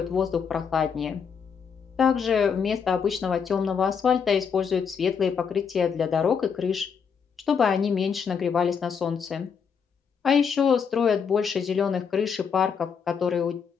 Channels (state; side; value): quieter; right; 6.6 dB